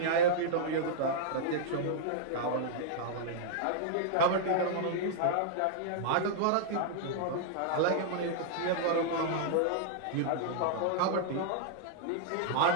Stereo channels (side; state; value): both; different; correlation -0.02